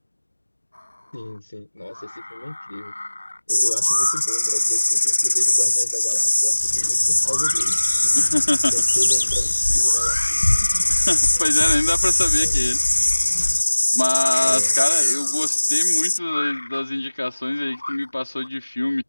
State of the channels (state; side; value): inverted; both; correlation -1.00